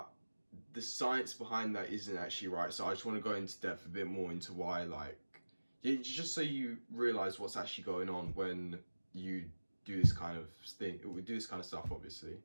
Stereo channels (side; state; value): both; inverted; correlation -1.00